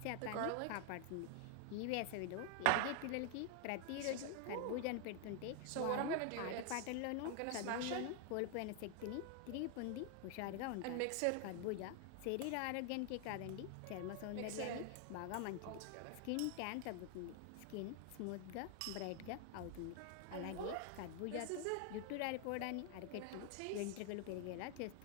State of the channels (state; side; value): different; both; correlation 0.00